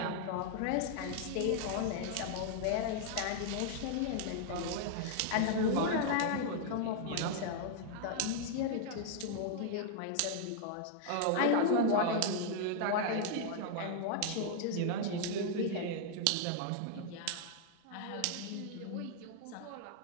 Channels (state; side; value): different; both; correlation -0.01